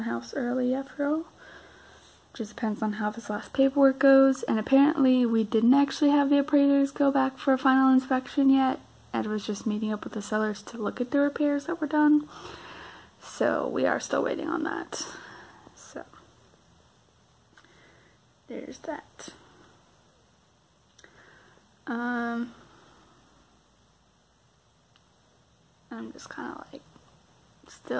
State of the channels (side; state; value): both; identical; correlation 1.00